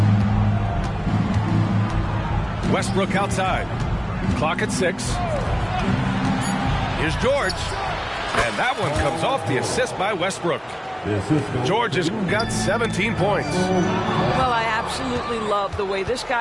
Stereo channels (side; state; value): both; identical; correlation 1.00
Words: Westbrook outside. Clock at 6. Here's George. And that one comes off the assist by Westbrook. George has got 17 points. Well, I absolutely love the way this